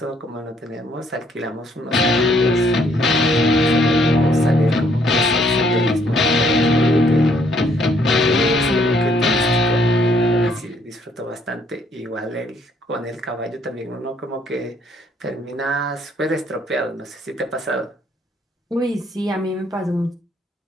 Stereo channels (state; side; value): normal; both; correlation 0.67